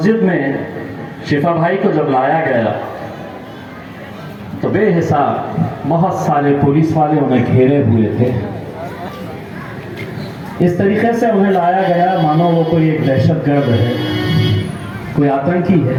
में शिफा भाई को जब लाया गया तो बेहिसाब बहुत सारे पुलिस वाले उन्हें घेरे हुए थे। इस तरीके से उन्हें लाया गया मानो वो कोई एक दहशतगर्द है, कोई आतंकी है।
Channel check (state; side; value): identical; both; correlation 1.00